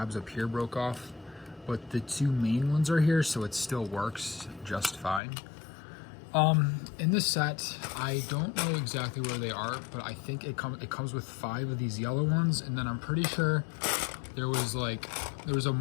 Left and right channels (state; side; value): drops out; right; at 5.2 s